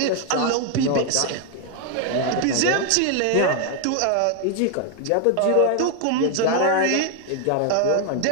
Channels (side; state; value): both; different; correlation 0.01